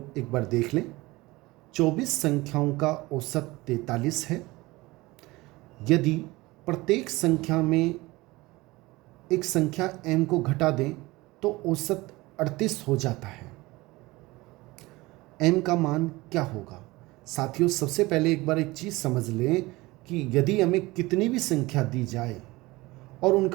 एक बार देख लें। 24 संख्याओं का औसत 43 है। यदि प्रत्येक संख्या में एक संख्या m को घटा दें तो औसत 38 हो जाता है। m का मान क्या होगा? साथियों, सबसे पहले एक बार एक चीज़ समझ लें कि यदि हमें कितनी भी संख्या दी जाए और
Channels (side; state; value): left; quieter; 21.0 dB